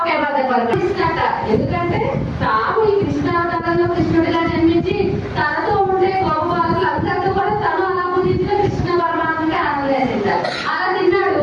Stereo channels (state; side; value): identical; both; correlation 1.00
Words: బద్దలు పడుతున్నట. ఎందుకంటే తాను ఈ కృష్ణావతారంలో కృష్ణుడిగా జన్మించి తనతో ఉండే గొప్ప అందరితో కూడా తను అలా ముందుగా కృష్ణ పరమాత్మకి ఆనందంగా తింటారు. అలా